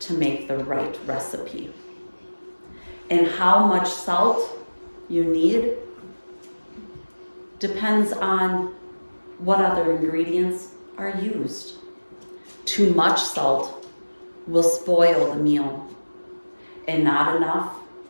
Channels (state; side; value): inverted; both; correlation -1.00